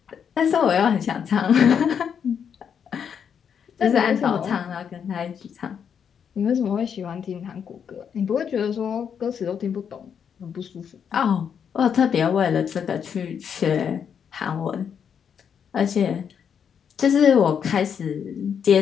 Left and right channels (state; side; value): quieter; right; 7.6 dB